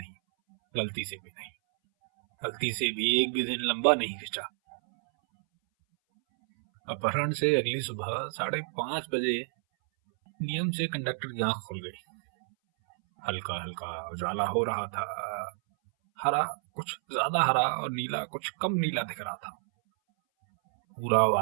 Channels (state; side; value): silent; left; 58 dB below the other